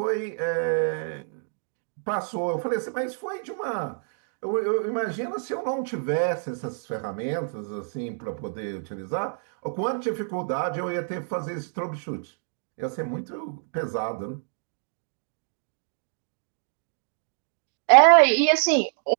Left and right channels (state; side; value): silent; left; digital silence